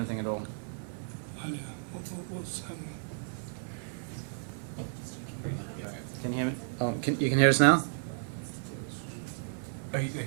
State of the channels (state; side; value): silent; left; 56 dB below the other